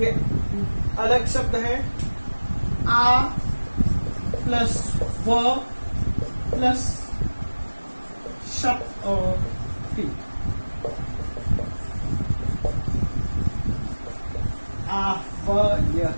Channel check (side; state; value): both; inverted; correlation -1.00